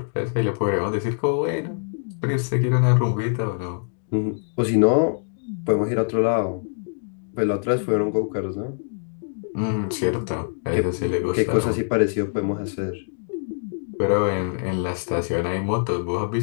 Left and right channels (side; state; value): right; silent; digital silence